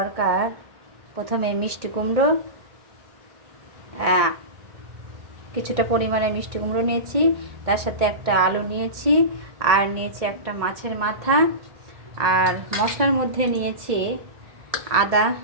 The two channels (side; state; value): left; late; 1.8 ms